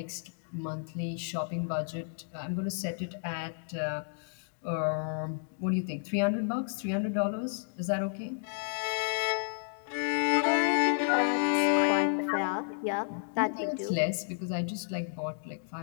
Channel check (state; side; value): silent; right; digital silence